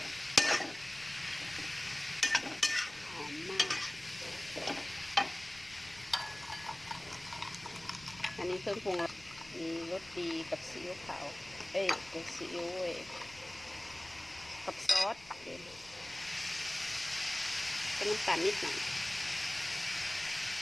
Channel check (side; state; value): left; noise; rumble, 22 dB below the sound